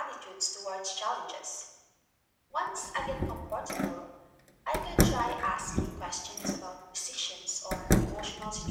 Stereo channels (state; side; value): identical; both; correlation 1.00